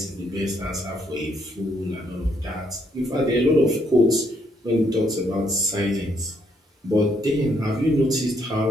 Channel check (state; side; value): normal; both; correlation 0.72